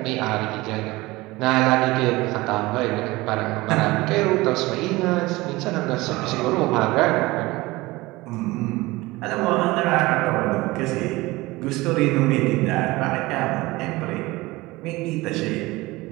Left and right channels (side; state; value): left; quieter; 20.7 dB